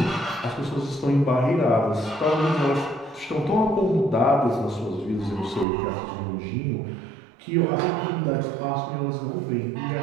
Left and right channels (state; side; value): drops out; left; at 5.7 s